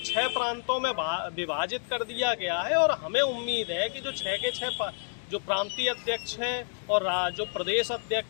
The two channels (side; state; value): right; silent; digital silence